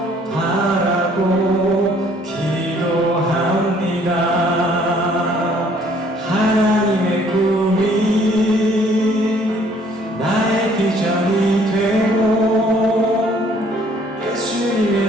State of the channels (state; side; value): normal; both; correlation 0.60